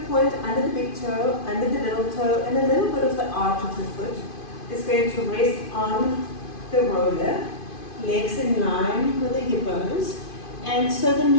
point under the big toe, under the little toe, and a little bit of the arch of the foot, is going to rest on the roller, legs in line with the hip bones. And so the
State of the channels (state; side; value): late; right; 2.5 ms